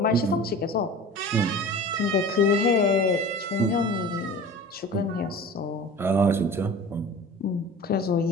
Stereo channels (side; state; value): both; normal; correlation 0.38